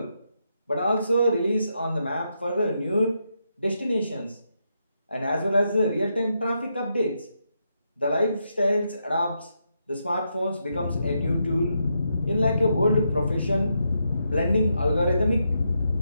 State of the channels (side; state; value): both; inverted; correlation -0.82